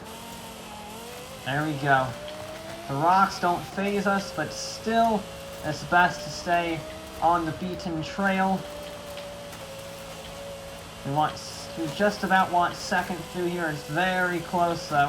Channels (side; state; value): both; identical; correlation 1.00